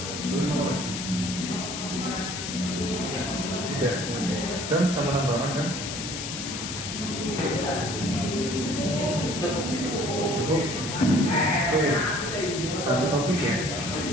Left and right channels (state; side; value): noise; left; hiss, 6 dB below the sound